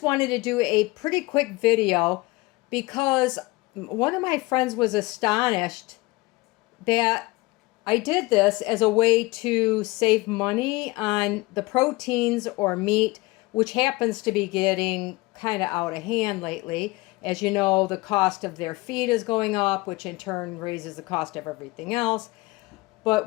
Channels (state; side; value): quieter; right; 22.0 dB